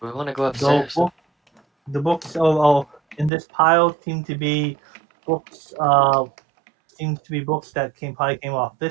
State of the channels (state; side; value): drops out; left; at 3.3 s